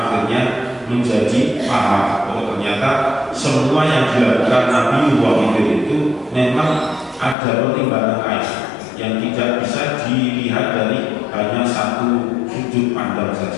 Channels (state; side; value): drops out; right; at 7.4 s